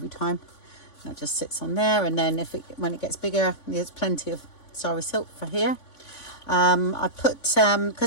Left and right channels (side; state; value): right; late; 3.5 ms